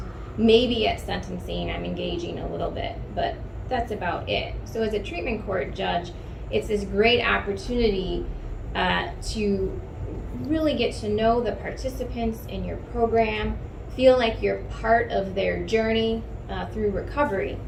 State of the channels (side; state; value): both; identical; correlation 1.00